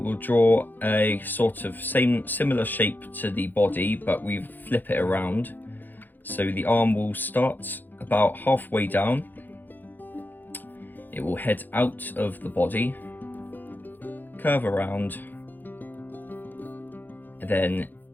draw a sort of similar shape to the body, but we flip it around. So the arm will start about halfway down. It will head out of the body, curve around, and then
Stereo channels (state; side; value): late; right; 0.088 ms